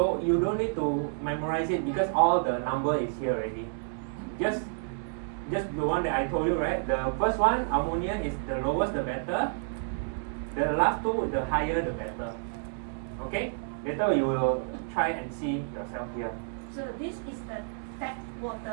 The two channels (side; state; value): left; silent; digital silence